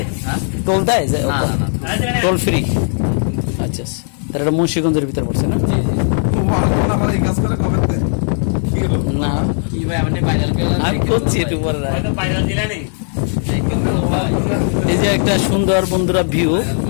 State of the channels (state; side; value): silent; right; 59 dB below the other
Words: টোল দেয়? Toll free? আচ্ছা, তাহলে এটা মুন্সিগঞ্জের ভিতরে পড়ছে না? না, আমি করছি একটু পরে। এই যে একটা সুন্দর বন্ধুরা ভিউ,